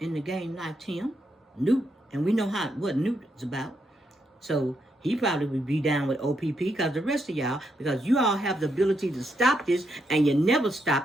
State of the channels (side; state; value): both; normal; correlation 0.79